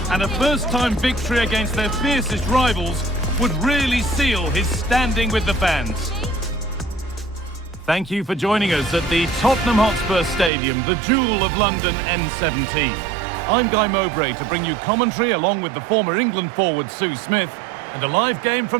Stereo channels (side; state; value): left; drops out; at 10.5 s